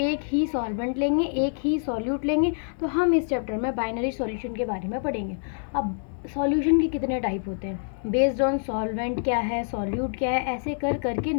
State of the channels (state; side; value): silent; right; 61 dB below the other